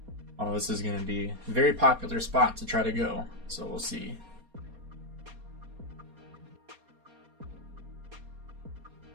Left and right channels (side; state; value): left; late; 4.3 ms